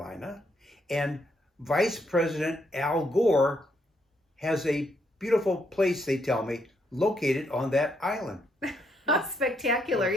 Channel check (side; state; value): both; normal; correlation 0.75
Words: And Vice President Al Gore has a beautiful place, they tell me, located on that island. Spectacular.